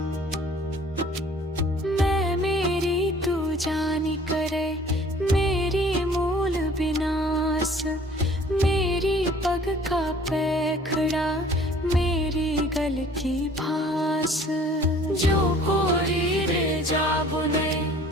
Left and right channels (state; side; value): normal; both; correlation 0.52